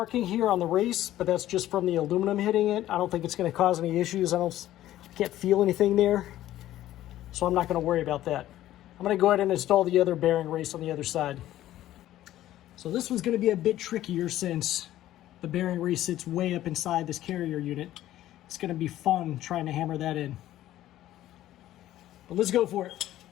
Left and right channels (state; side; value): quieter; right; 13.7 dB